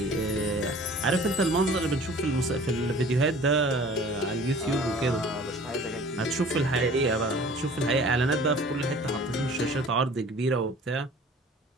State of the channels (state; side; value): normal; both; correlation 0.47